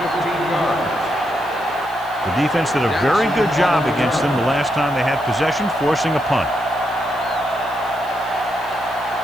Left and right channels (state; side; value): noise; left; hiss, 23 dB below the sound